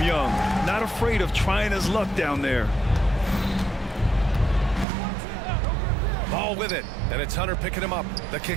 Young. Not afraid of trying his luck down there. Ball with it, and it's Hunter picking him up. The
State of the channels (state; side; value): drops out; left; at 4.9 s